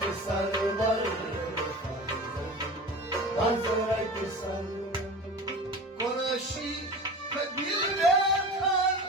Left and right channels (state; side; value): normal; both; correlation 0.34